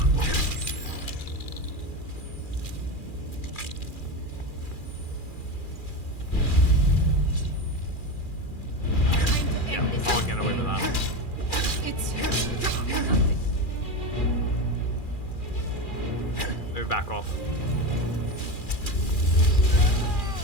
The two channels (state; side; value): late; right; 2.4 ms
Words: Yeah, I won't get away with that. It's... Maybe back off.